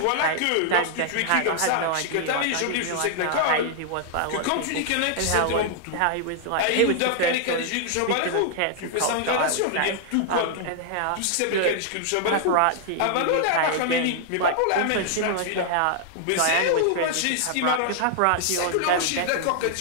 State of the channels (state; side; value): different; both; correlation 0.00